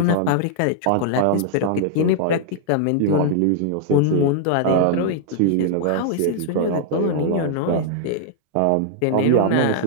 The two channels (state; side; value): different; both; correlation -0.01